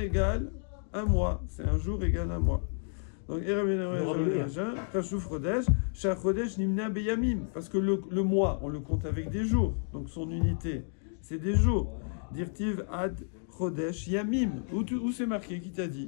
égale un mois. C'est un jour égale un mois. Donc Chashuv Chodesh, Shach Chodesh Nimna Beyamim, parce que le mois, on le compte avec des jours. Donc son unité, c'est des jours. Dirtiv Ad Chodesh Yamim. Où c'est marqué? Qui t'a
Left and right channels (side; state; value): right; silent; 57 dB below the other